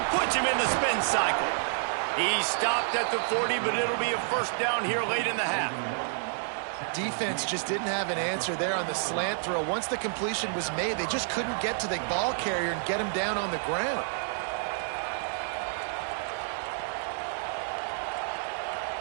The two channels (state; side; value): silent; left; digital silence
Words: Puts him in the spin cycle. He stopped at the 40, but it'll be a first down here late in the half. Defense just didn't have an answer there on the slant throw. Once the completion was made, they just couldn't get to the ball carrier and get him down on the ground.